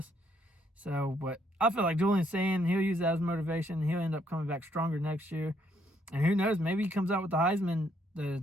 So, but I feel like Julian's saying he'll use that as motivation. He'll end up coming back stronger next year. And who knows, maybe he comes out with the Heisman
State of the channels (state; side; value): normal; both; correlation 0.71